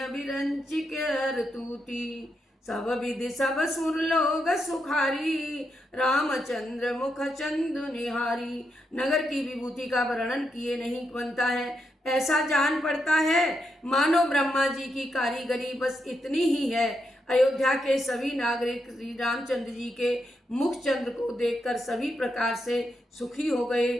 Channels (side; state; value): both; normal; correlation 0.83